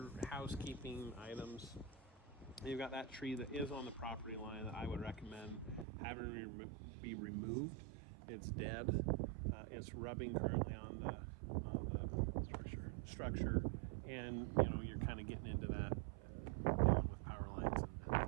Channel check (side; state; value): left; drops out; at 5.9 s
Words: housekeeping items. You've got that tree that is on the property line that I would recommend having be removed. It's dead. It's rubbing currently on the structure, and you're kind of getting into that dealing with power lines and